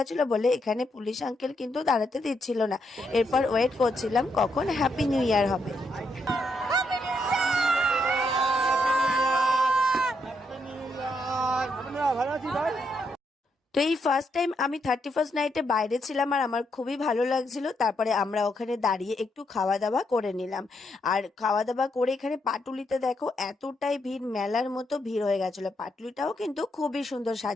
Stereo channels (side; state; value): both; normal; correlation 0.78